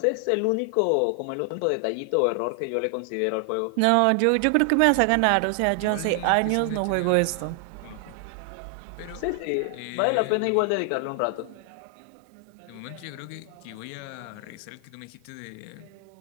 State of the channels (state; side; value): different; both; correlation 0.00